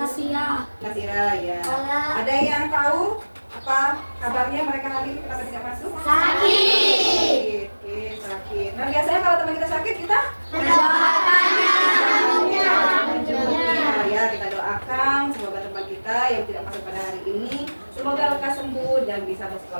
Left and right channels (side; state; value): both; inverted; correlation -1.00